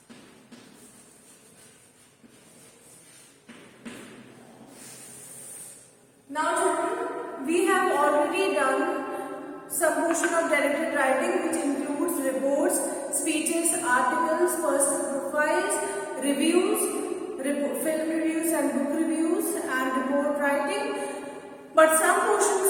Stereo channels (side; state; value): both; identical; correlation 1.00